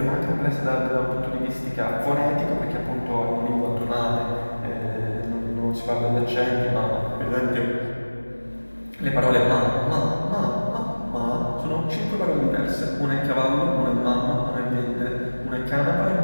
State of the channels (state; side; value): inverted; both; correlation -1.00